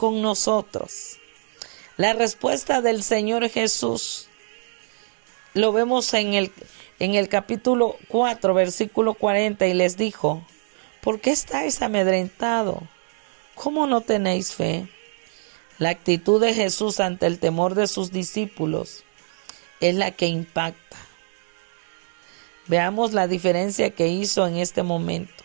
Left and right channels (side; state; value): left; silent; 63 dB below the other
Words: nosotros. La respuesta del Señor Jesús lo vemos en el capítulo 4, versículo 40, y les dijo: ¿por qué estáis amedrentados? ¿Cómo no tenéis fe? La actitud de Jesús ante el temor de sus discípulos es la que impacta. Veamos la diferencia que hizo en este momento.